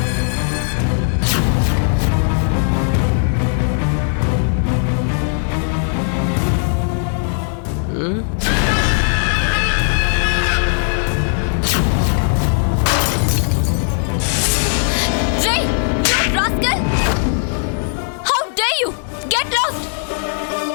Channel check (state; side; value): silent; right; 66 dB below the other